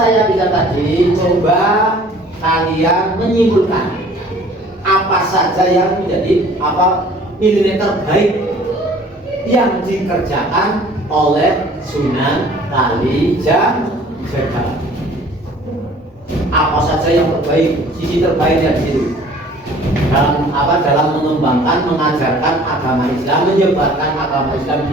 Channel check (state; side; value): normal; both; correlation 0.51